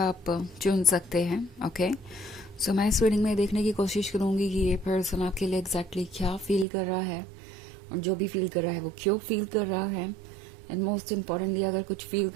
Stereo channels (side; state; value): left; drops out; at 6.7 s